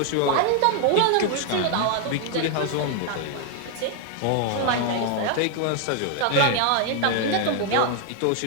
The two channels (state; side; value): different; both; correlation 0.00